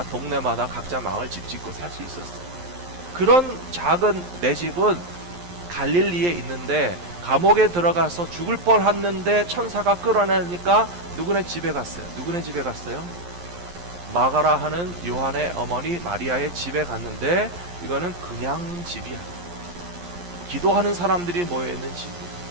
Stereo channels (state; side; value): late; left; 11 ms